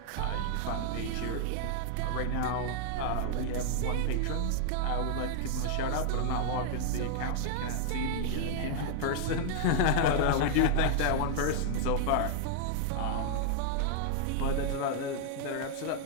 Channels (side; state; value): both; different; correlation -0.01